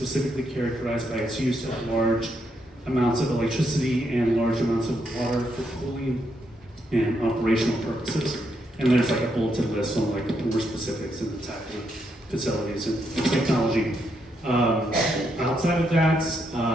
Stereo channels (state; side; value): normal; both; correlation 0.79